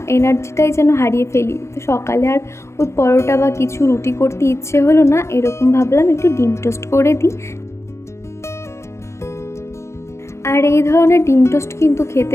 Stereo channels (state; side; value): late; right; 0.13 ms